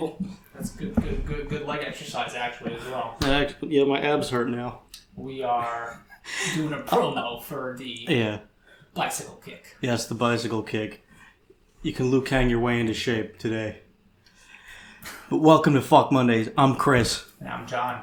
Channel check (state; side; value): identical; both; correlation 1.00